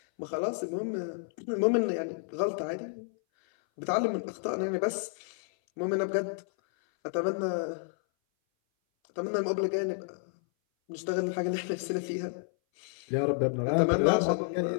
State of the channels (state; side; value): silent; right; 57 dB below the other